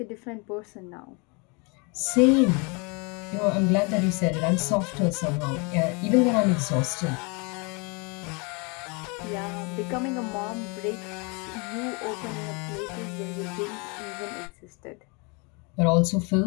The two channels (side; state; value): right; quieter; 31.5 dB